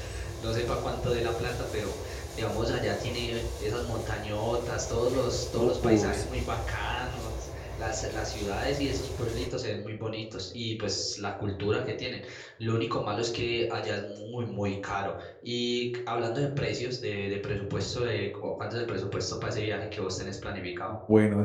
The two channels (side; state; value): both; identical; correlation 1.00